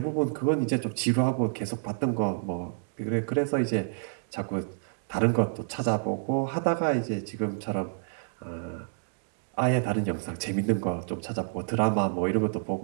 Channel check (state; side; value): silent; left; digital silence